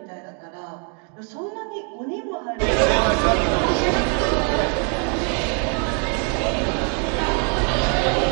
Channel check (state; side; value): quieter; left; 39.7 dB